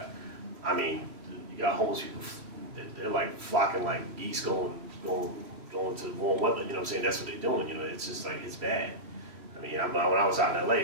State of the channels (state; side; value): late; left; 3.1 ms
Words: You got homeless people. They're like flocking like geese going to the warm weather. That's what they're doing. It's just like it's bad. When I was out in LA,